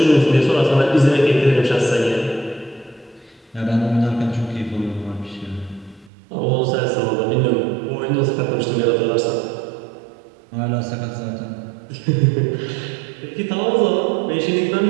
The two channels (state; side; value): drops out; left; at 6.1 s